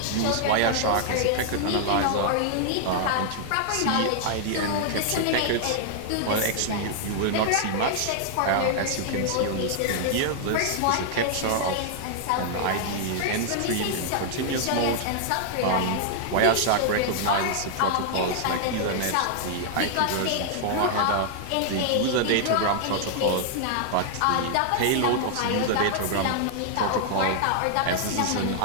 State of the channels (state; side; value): different; both; correlation -0.01